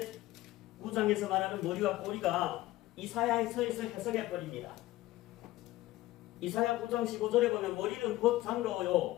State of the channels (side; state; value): right; quieter; 16.9 dB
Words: 9장에서 말하는 머리와 꼬리가 이사야에서 해석해버립니다. 이사야 9장 15절에 보면 머리는 곧